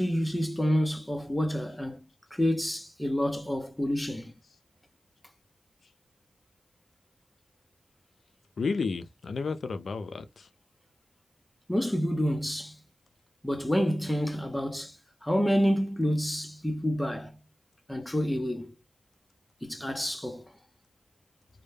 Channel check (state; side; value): normal; both; correlation 0.96